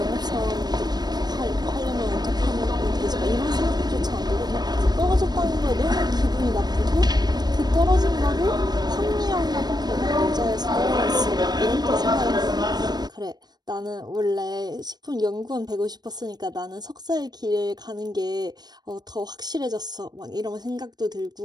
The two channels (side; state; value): left; late; 0.20 ms